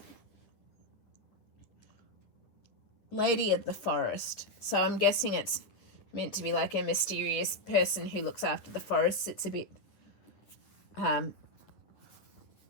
Lady of the Forest. So I'm guessing it's meant to be like a mysterious person who looks after the forests. It's a bit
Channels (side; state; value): right; late; 9.9 ms